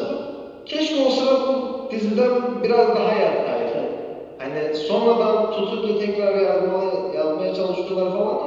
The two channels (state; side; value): identical; both; correlation 1.00